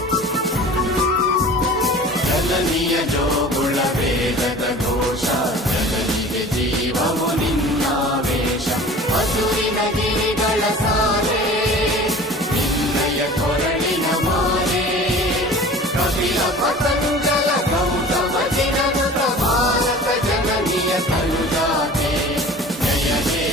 ಜನನಿಯ ಜೋಗುಳ ವೇದದ ಘೋಷ ಜನನಿಗೆ ಜೀವವು ನಿನ್ನಾವೇಶ ಹಸುರಿನ ಗಿರಿಗಳ ಸಾಲೆ ನಿನ್ನಯ ಕೊರಳಿನ ಮಾಲೆ ಕಪಿಲ ಪತಂಜಲ ಗೌತಮ ಜಿನನುತ ಭಾರತ ಜನನಿಯ ತನುಜಾತೆ ಜಯ ಹೇ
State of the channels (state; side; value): normal; both; correlation 0.42